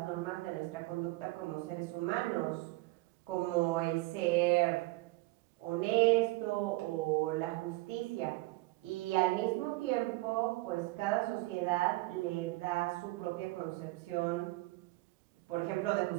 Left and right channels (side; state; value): left; quieter; 21.6 dB